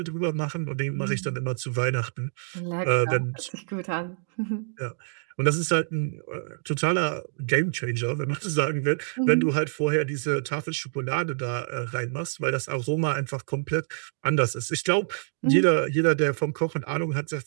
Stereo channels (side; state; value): left; silent; digital silence